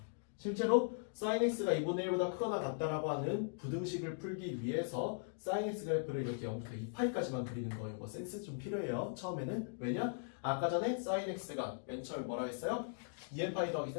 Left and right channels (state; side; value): silent; right; digital silence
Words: 실제로 sin x가 2분의 1보다 크거나 같다라고 하는 부등식을 풀기 위해서 sin x 그래프를 이렇게 0부터 2파이까지만 그리는 거 이거 센스 좀 필요해요. 처음에는. 왜냐? 아까 전에 sin x가 맨 처음에 뭐라 했어요? 2n파이 더하기